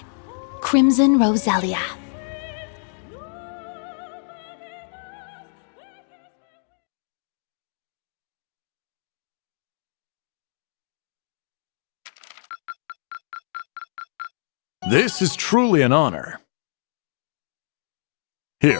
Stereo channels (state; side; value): silent; right; digital silence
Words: Crimson Roselia. This is truly an honor.